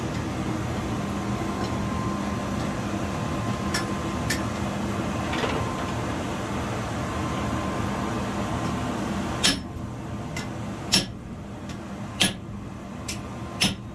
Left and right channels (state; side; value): identical; both; correlation 1.00